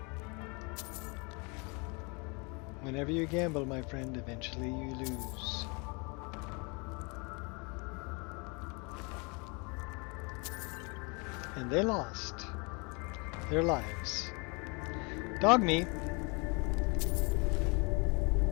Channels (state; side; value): quieter; right; 31.0 dB